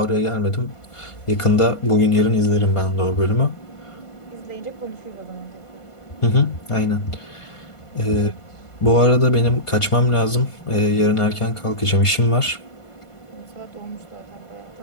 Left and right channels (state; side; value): late; right; 1.5 ms